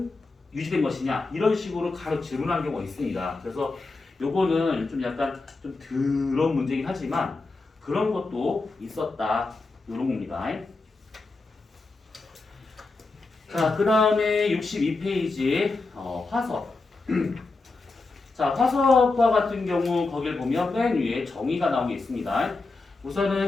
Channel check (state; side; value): quieter; right; 3.6 dB